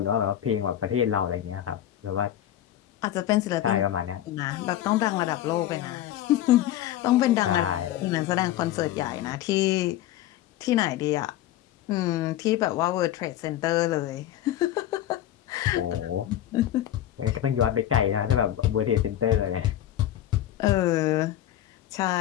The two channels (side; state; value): right; quieter; 12.4 dB